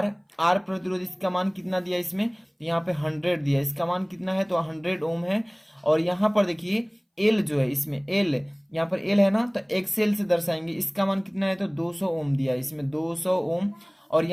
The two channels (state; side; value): identical; both; correlation 1.00